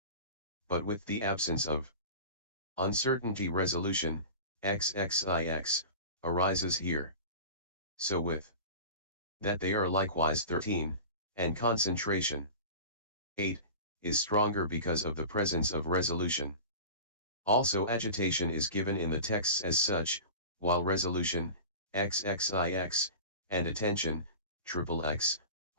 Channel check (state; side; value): inverted; both; correlation -0.34